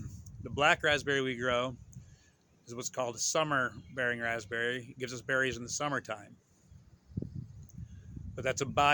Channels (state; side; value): identical; both; correlation 1.00